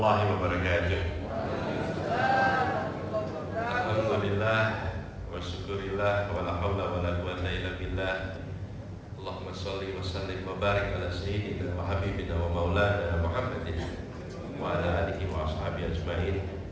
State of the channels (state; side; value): identical; both; correlation 1.00